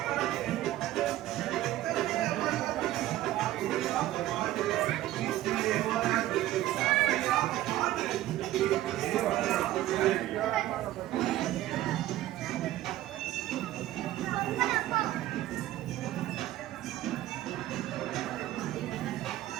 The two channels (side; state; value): left; quieter; 14.8 dB